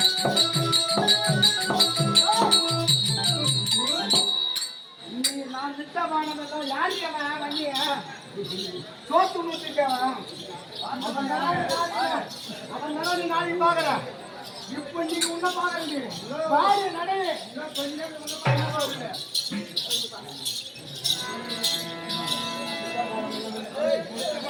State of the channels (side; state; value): both; identical; correlation 1.00